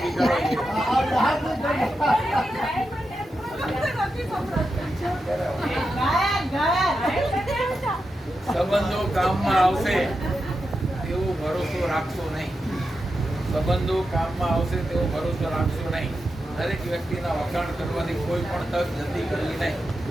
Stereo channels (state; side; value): normal; both; correlation 0.88